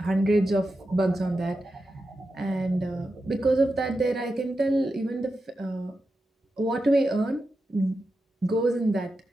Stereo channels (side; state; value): both; normal; correlation 0.90